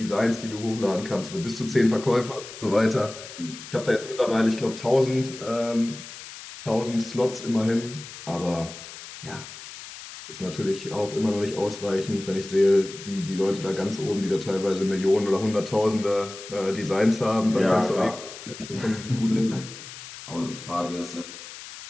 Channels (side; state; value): left; noise; hiss, 14 dB below the sound